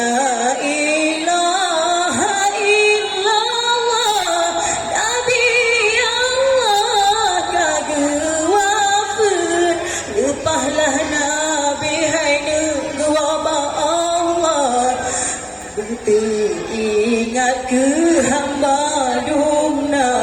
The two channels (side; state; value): both; identical; correlation 1.00